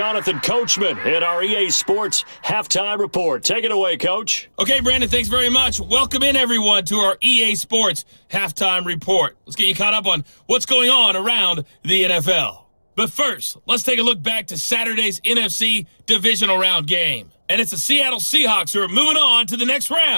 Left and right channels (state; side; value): inverted; both; correlation -1.00